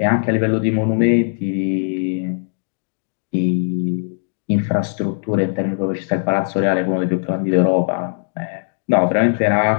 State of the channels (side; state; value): right; silent; digital silence